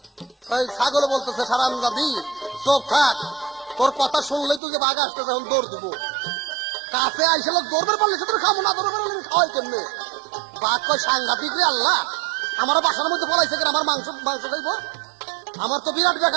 ওই ছাগল বলতেছে সারাম দাদি চোখ থাক, তোর কথা শুনলেই তুই যে বাঘ আসতেছে এখন দৌড় দিব, কাছে আইসে লোক দৌড়বে পারলে সে তোর খাবো না, দৌড় পারলে খাওয়াই কেমনে। বাঘ কয় সাংঘাতিক রে আল্লাহ, আমার বাসার মধ্যে পলাইছে কেন, আমার মাংস খাইবো, আমার তো বিরাট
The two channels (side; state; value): left; drops out; at 4.6 s